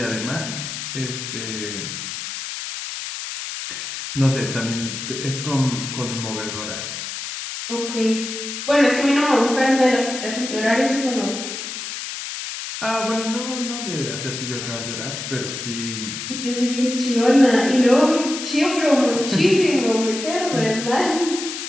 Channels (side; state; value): left; noise; hiss, 7 dB below the sound